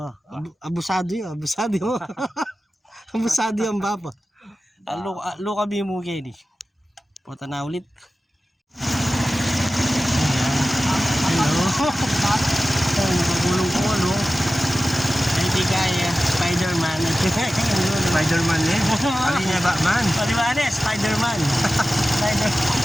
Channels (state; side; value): normal; both; correlation 0.95